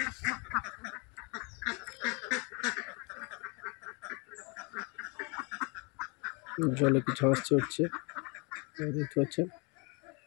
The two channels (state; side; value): quieter; right; 31.9 dB